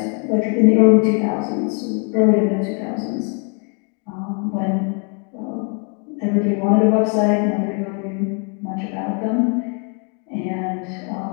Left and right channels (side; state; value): right; quieter; 38.6 dB